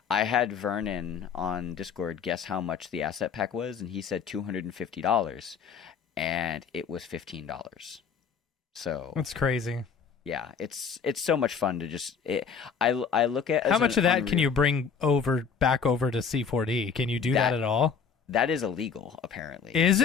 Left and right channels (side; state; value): right; quieter; 6.3 dB